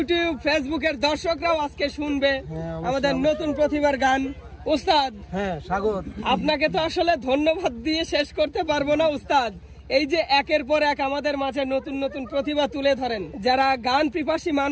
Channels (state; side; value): identical; both; correlation 1.00